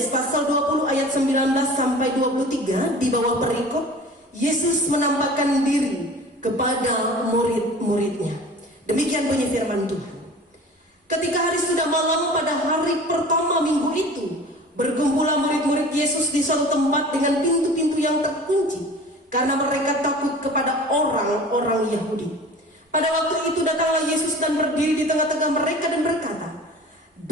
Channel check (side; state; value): both; normal; correlation 0.41